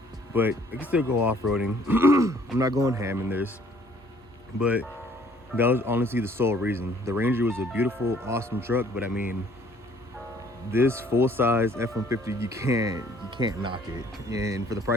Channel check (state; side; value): normal; both; correlation 0.59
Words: but I can still go off-roading. I'm not going ham in this, but that was honestly the sole reason. The Ranger was a beautiful, awesome truck, but I mean, this full-size F-150, you can't knock it. And for the